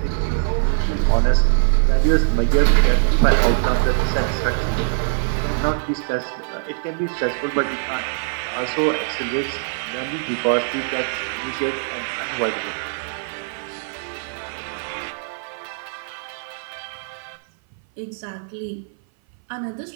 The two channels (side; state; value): left; silent; 57 dB below the other